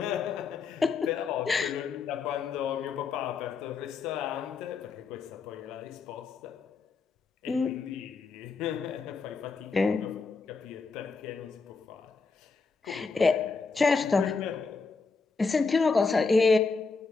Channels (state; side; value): quieter; right; 4.6 dB